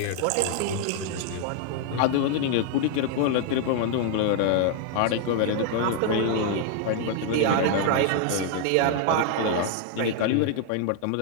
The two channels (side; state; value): both; different; correlation 0.00